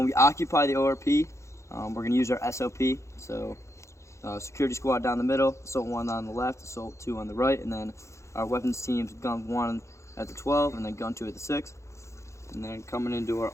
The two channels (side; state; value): right; late; 0.14 ms